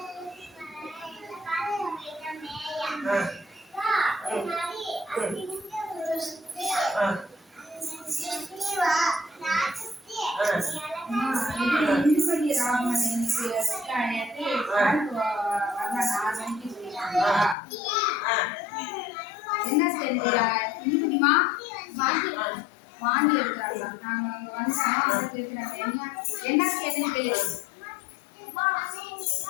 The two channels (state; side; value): drops out; right; at 17.6 s